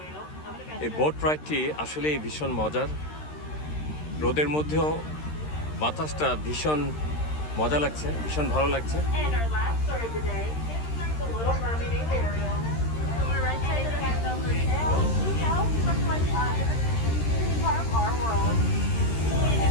I'm gonna এই boat রাইডটি আসলেই ভীষণ মজার। রোদের মধ্যেও বাতাসটা ভীষণ মজা লাগছে, ভীষণ ভালো লাগছে। And our last story of the day is like the Little Mermaid named Ariel. On the right side of the tail, she tells much like part of our world.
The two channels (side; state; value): right; late; 13 ms